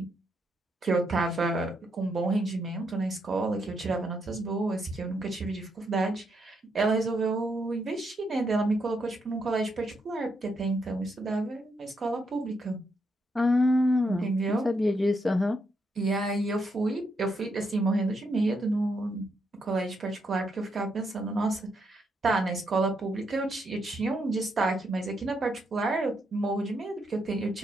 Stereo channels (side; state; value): both; normal; correlation 0.79